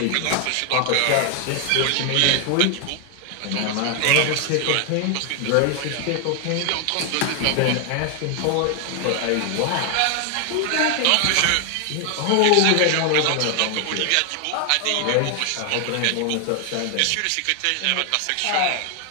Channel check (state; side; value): different; both; correlation 0.00